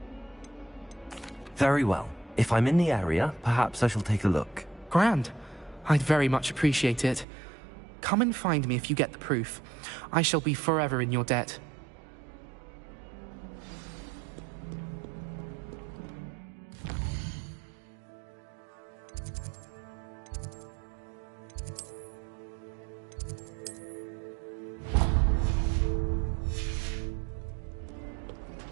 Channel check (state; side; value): drops out; left; at 7.2 s